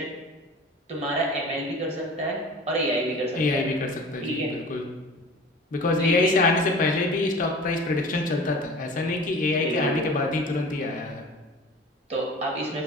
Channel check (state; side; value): normal; both; correlation 0.40